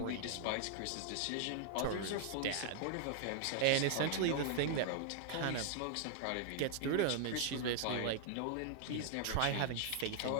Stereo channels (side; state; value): both; different; correlation 0.00